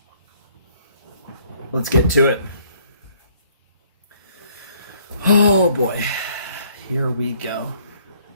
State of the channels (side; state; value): both; inverted; correlation -0.63